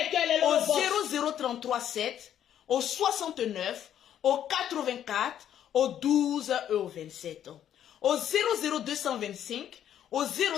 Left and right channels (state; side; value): quieter; right; 10.3 dB